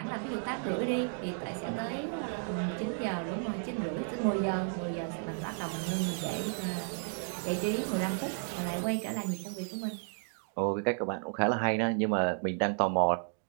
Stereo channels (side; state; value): left; silent; 56 dB below the other